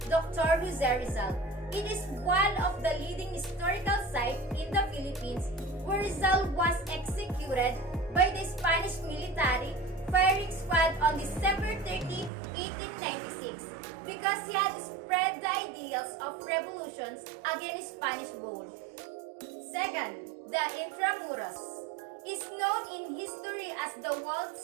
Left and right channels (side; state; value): left; drops out; at 12.3 s